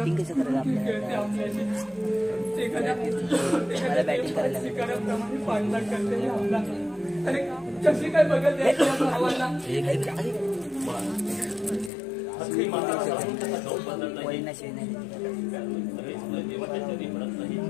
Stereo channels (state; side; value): drops out; right; at 11.9 s